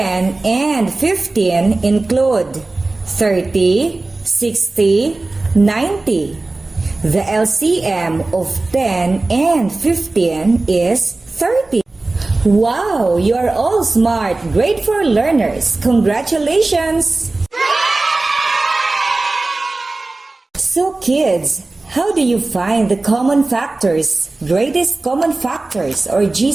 and 15 include 30, 60, 90. The LCM of 10 and 15 is 30. Wow, you are all smart, grade 4 learners. Congratulations! So kids, how do you find the common factors, greatest common factors or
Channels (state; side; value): quieter; left; 3.2 dB